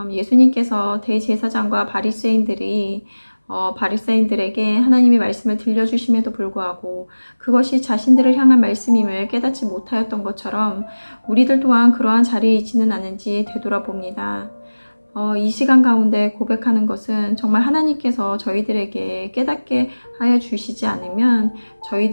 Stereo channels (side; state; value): both; inverted; correlation -1.00